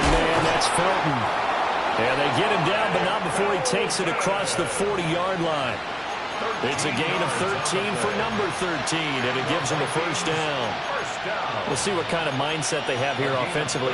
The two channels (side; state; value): both; identical; correlation 1.00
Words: man, that's Felton. And they get him down, but not before he takes it across the 40-yard line. It's a gain of 13 for number 13, and it gives him a first down. We'll see what kind of mindset they have here